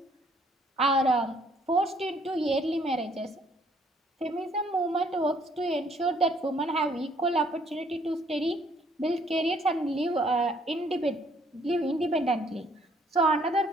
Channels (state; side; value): normal; both; correlation 0.64